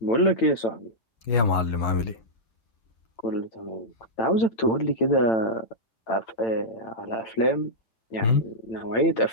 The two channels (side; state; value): right; late; 8.9 ms